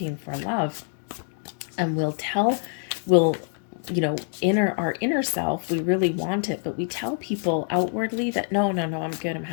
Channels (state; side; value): silent; right; 58 dB below the other